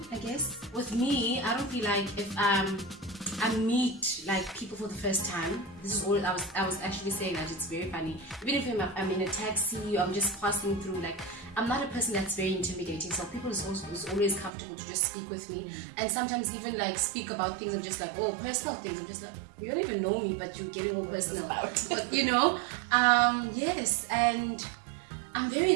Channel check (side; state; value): left; drops out; at 14.5 s